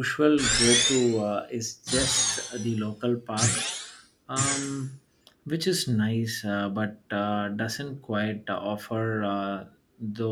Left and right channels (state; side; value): identical; both; correlation 1.00